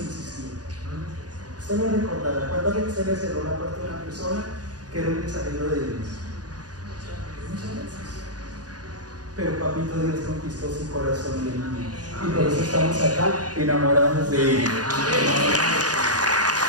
Usted lo recordará. ¿Cuántas veces usted le cerró la puerta a una persona que era un mensajero de Dios? Muchas veces. Pero Papito Dios conquistó su corazón y por eso estamos acá enamorados de Él.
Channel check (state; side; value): late; left; 0.68 ms